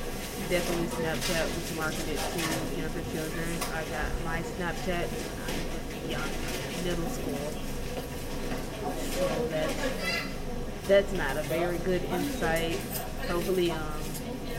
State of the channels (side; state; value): both; identical; correlation 1.00